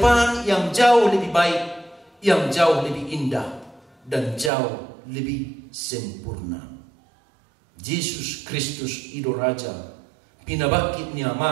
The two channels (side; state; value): left; drops out; at 4.5 s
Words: yang jauh lebih baik, yang jauh lebih indah, dan jauh lebih sempurna. Yesus Kristus Ido Raja, pinabakit niya